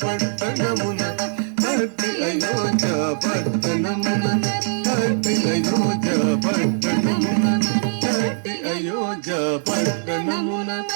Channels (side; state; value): left; silent; digital silence